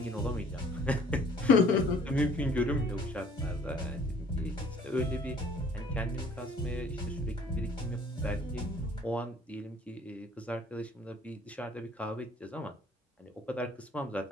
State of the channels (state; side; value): normal; both; correlation 0.55